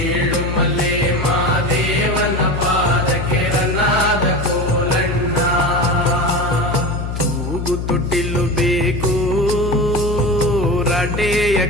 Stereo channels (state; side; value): noise; left; hum, 4 dB below the sound